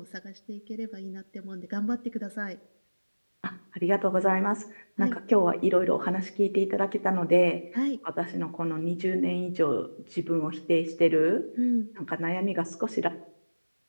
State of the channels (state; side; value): inverted; both; correlation -1.00